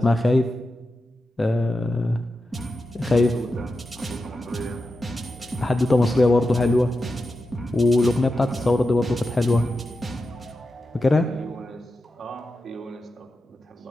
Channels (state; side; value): normal; both; correlation 0.90